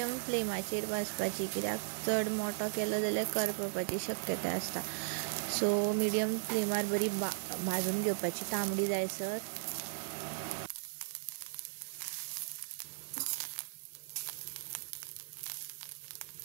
फ्लेमाचेर भाजपाची, कित्याक चड मोठो केलो जाल्यार करपपाची शक्यताय आसता. सो मिडियम फ्लेमार बरी भाजून घेवपाची तांबडी जायसर.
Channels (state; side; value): silent; left; digital silence